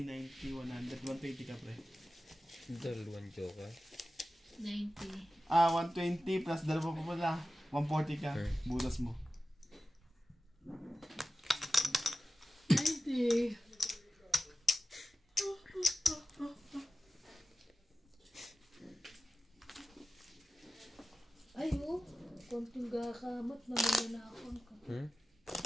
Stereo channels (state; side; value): normal; both; correlation 0.94